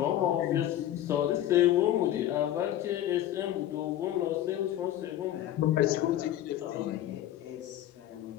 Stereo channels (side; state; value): right; quieter; 12.5 dB